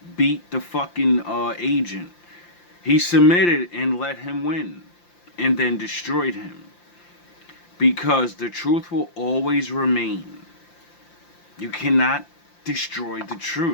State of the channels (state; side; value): late; right; 5.8 ms